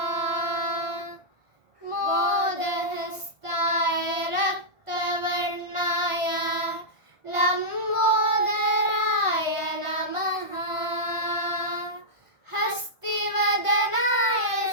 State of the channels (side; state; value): left; late; 1.5 ms